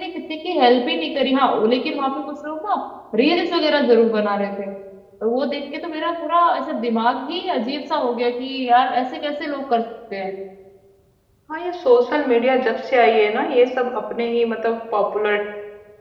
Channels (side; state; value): both; identical; correlation 1.00